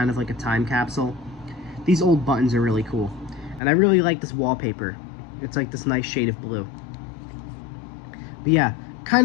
of like a time capsule. These old buttons are really cool. And I really like this wallpaper. It's like this nice shade of blue. But yeah, kind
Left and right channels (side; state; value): right; drops out; at 3.6 s